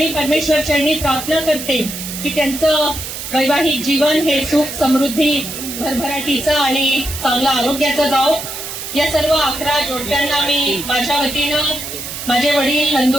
परमेश्वर चरणी प्रार्थना करते की त्यांचं वैवाहिक जीवन हे सुख, समृद्धी, भरभराटीचं आणि चांगलं आरोग्याचं जावो. या सर्व 11 जोडप्यांना मी माझ्या वतीनं, माझे वडील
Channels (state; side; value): noise; right; hiss, 8 dB below the sound